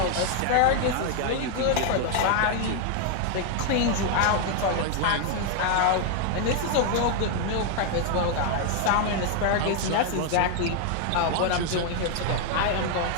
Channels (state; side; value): different; both; correlation 0.00